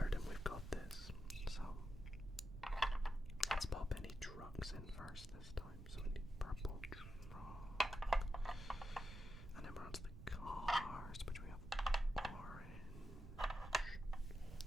we've got this. So let's pop any trucks in first this time. So we need purple truck. And then we're on to the cars, which we have orange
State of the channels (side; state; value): right; noise; rumble, 12 dB below the sound